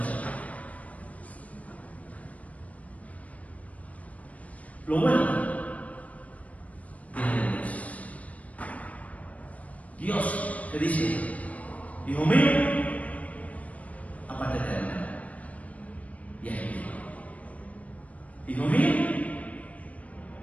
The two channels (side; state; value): right; late; 0.068 ms